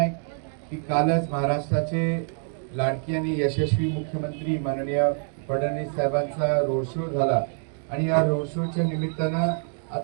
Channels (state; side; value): silent; left; 61 dB below the other